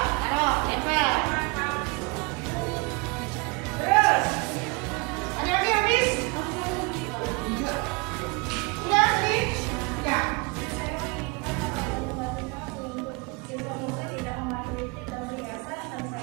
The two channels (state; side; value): quieter; left; 27.7 dB